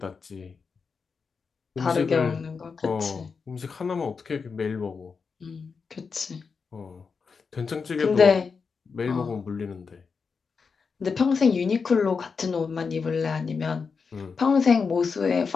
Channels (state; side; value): quieter; right; 5.3 dB